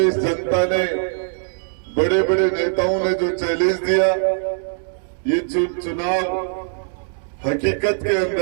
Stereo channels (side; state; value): left; silent; 65 dB below the other